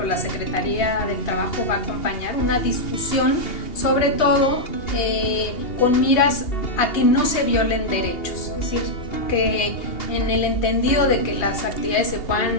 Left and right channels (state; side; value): late; right; 2.8 ms